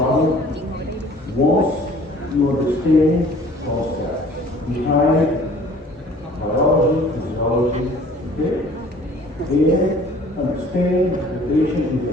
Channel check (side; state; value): both; normal; correlation 0.51